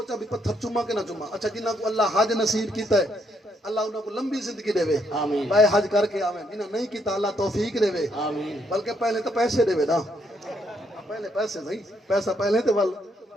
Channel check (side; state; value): both; normal; correlation 0.74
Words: بھی پتھر چوما کہ نہ چوما اچھا جنہ کو اللہ حج نصیب کیتا ہے اللہ انہاں کو لمبی زندگی دے وے آمین بھائی حج کر کے آویں جنہ نہیں کیتا اللہ توفیق دے وے آمین بلکہ پہلے تو پیسے دے وے نا پہلے پیسے نہیں پیسہ پہلے تے ول